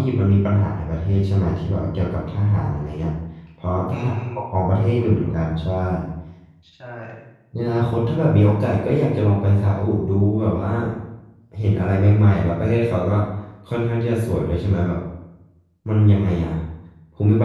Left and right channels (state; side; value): identical; both; correlation 1.00